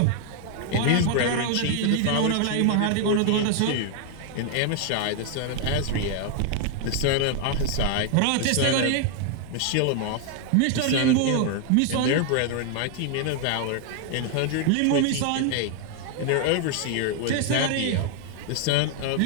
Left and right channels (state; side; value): different; both; correlation 0.00